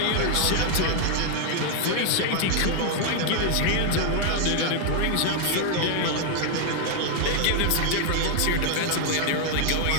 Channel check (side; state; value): both; different; correlation 0.00